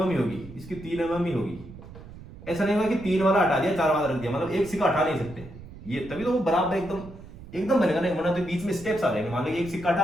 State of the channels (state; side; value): noise; right; rumble, 16 dB below the sound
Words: ही होगी, इसकी 3 mm ही होगी। ऐसा नहीं होगा कि 3 वाला हटा दिया 4 वाला रख दिया, मतलब एक सिक्का हटा नहीं सकते ये, तभी तो वो बराबर एकदम एकदम बनेगा ना, वरना तो बीच में स्टेप्स आ जाएंगे। मान लो एक सिक्का